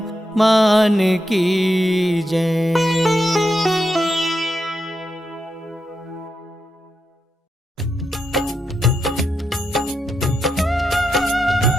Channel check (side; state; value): both; normal; correlation 0.84